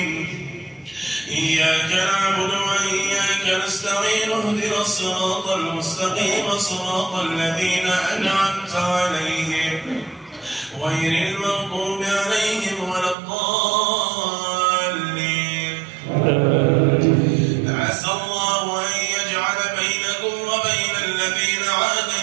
إياك نعبد وإياك نستعين اهدنا الصراط المستقيم صراط الذين أنعمت عليهم غير المغضوب عليهم ولا الضالين. عسى الله أن يجعل بينكم وبين الذين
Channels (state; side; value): drops out; left; at 13.2 s